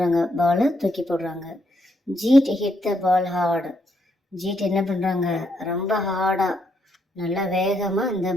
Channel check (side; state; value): both; normal; correlation 0.76